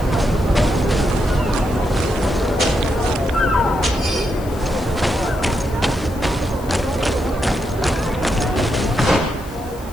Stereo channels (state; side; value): noise; left; hiss, 20 dB below the sound